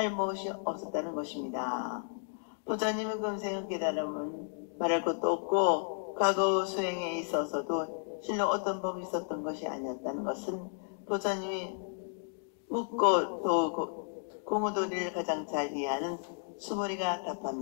무엇이 없었다는 것입니다. 부처님의 금생의 깨달음은 말할 것도 없고 과거 수행에 있어서도 실로 어떤 법이 있었던 것이 아니었다는 것은 부처님이 묻고 또 공의도리를 가장 잘 이해하는 수보리가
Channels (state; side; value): silent; right; digital silence